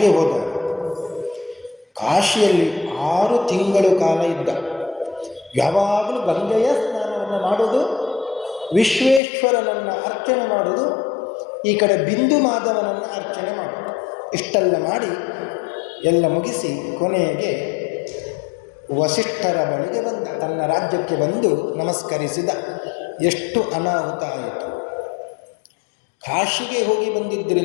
ಹೋದ. ಕಾಶಿಯಲ್ಲಿ 6 ತಿಂಗಳು ಕಾಲ ಇದ್ದ. ಯಾವಾಗಲೂ ಗಂಗೆಯ ಸ್ನಾನವನ್ನು ಮಾಡೋದು, ವಿಶ್ವೇಶ್ವರನನ್ನು ಅರ್ಚನೆ ಮಾಡೋದು, ಈ ಕಡೆ ಬಿಂದು ಮಾಧವನನ್ನು ಅರ್ಚನೆ ಮಾಡೋದು. ಇಷ್ಟೆಲ್ಲ ಮಾಡಿ ಎಲ್ಲ ಮುಗಿಸಿ ಕೊನೆಗೆ ವಸಿಷ್ಠರ ಬಳಿಗೆ ಬಂದ. ತನ್ನ ರಾಜ್ಯಕ್ಕೆ ಬಂದು ನಮಸ್ಕರಿಸಿದ. ಎಷ್ಟು ಅನಾಹುತ ಆಯಿತು. ಕಾಶಿಗೆ ಹೋಗಿ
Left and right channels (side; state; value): right; drops out; at 9.2 s